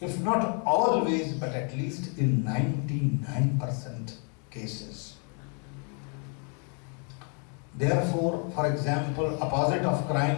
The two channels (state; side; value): quieter; right; 38.1 dB